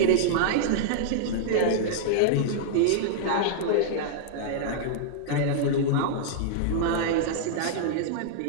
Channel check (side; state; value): both; different; correlation -0.01